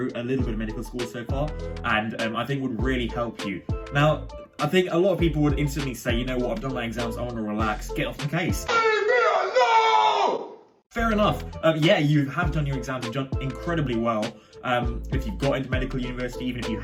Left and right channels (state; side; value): identical; both; correlation 1.00